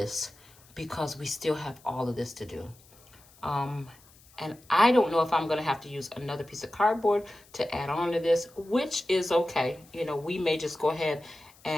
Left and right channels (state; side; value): noise; left; hiss, 27 dB below the sound